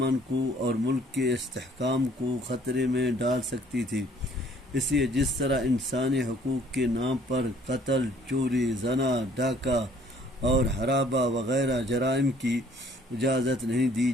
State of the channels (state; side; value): normal; both; correlation 0.59